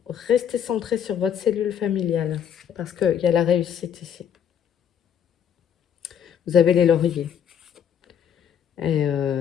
Restez centré sur votre cellule familiale. Parce qu'il y a la réussite ici. Vous avez les lauriers. Et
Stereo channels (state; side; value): quieter; right; 8.6 dB